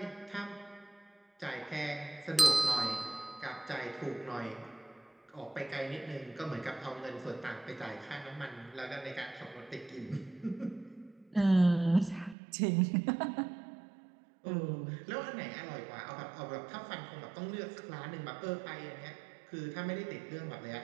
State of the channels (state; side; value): drops out; left; at 12.4 s